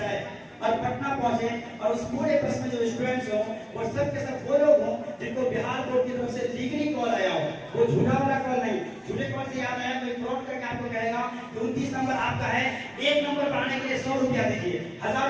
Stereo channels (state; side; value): identical; both; correlation 1.00